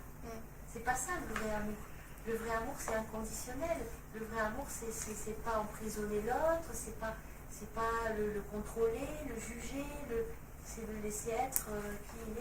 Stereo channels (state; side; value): identical; both; correlation 1.00